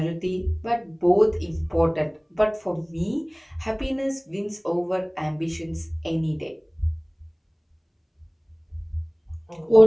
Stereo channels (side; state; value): both; identical; correlation 1.00